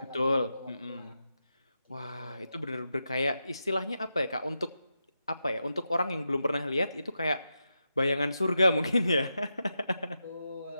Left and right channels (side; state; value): both; inverted; correlation -0.88